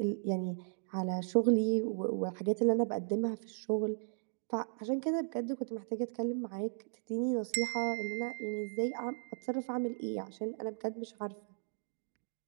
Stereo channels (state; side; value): silent; left; digital silence